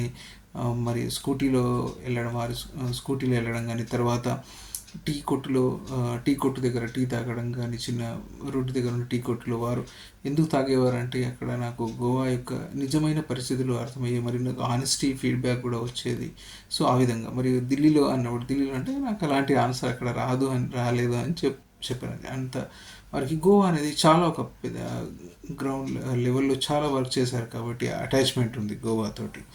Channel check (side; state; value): both; identical; correlation 1.00